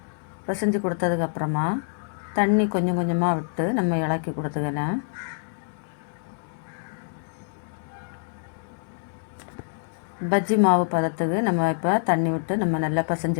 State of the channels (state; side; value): silent; right; digital silence